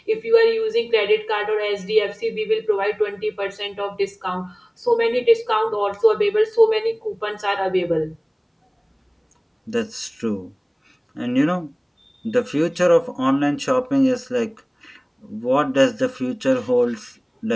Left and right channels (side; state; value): both; identical; correlation 1.00